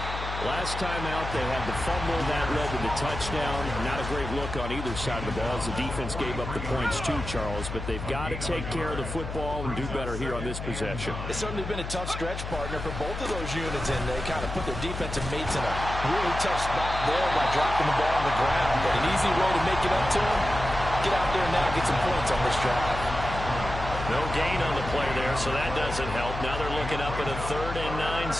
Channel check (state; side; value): noise; left; hum, 6 dB below the sound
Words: Last time out, they had the fumble. That led to the touchdown. Not a great look on either side of the ball as the defense gave up the points too, Charles. But they've got to take care of the football and do better here on this possession. It's certainly been a tough stretch, partner, for both of those units, and they kind of put their defensive mates in a really tough spot there by dropping the ball on the ground. But an easy way to make it up to them, get out there now and get some points on this drive. No gain on the play there, so that doesn't help. Now they're looking up at a 3rd and 9